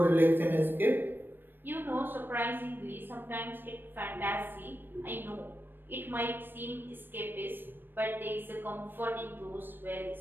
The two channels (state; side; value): late; left; 0.095 ms